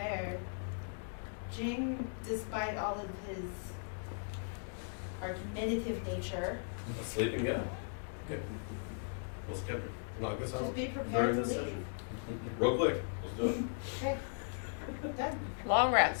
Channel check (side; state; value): right; silent; digital silence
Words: Jing, despite all of his argumentative nature, Sleep and go. Okay. We'll knock this out just be prepared during to this leave. session. Real quick. Good. Long rest.